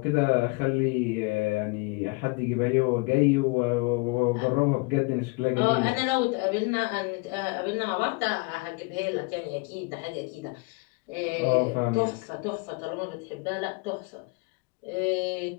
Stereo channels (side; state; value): right; quieter; 28.5 dB